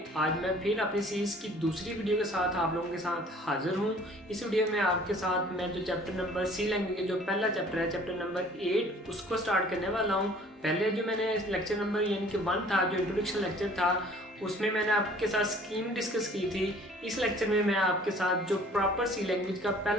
आज मैं फिर अपनी सीरीज़ की दूसरी वीडियो के साथ आप लोगों के साथ हाजिर हूँ। इस वीडियो में आपके साथ मैं जो चैप्टर नंबर सी लैंग्वेज के जो पहला चैप्टर है, चैप्टर नंबर 8, उसको स्टार्ट करने वाला हूँ। पहले जो मैंने लेक्चर नंबर यानी कि 1 था, जो इंट्रोडक्शन लेक्चर था, उसमें मैंने आपके साथ स्कीम डिस्कस की थी। इस लेक्चर में मैं आपके साथ जो प्रॉपर सी लैंग्वेज का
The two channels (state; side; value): normal; both; correlation 0.52